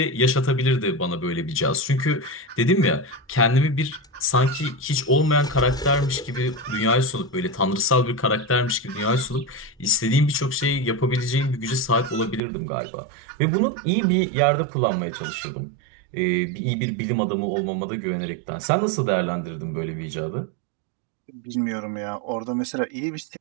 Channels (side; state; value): left; drops out; at 12.4 s